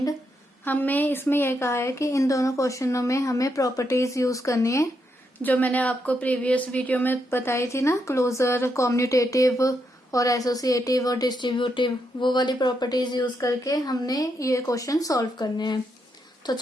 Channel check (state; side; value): normal; both; correlation 0.80